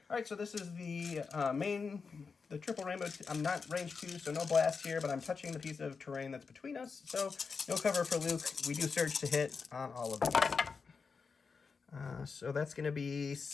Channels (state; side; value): quieter; right; 5.1 dB